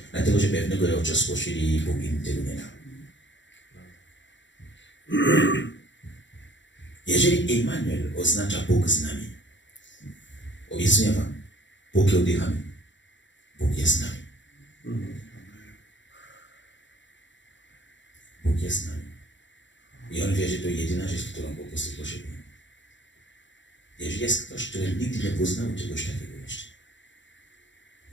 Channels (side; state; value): right; late; 0.54 ms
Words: dlatego że pewnego rodzaju spoczyli i Bóg im tego nie dał. Jeżeli Immanuel oznacza Bóg z nami, obiecuję wam, póki oddychamy, Bóg jest z nami. Bóg jest z nami. I on wie, że to jedyna rzecz, którą po prostu potrzebuje. Jeżeli jest ktoś, który nigdy nie poznał czegoś takiego jeszcze,